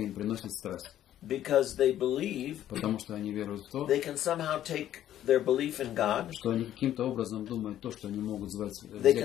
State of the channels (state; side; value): quieter; right; 11.9 dB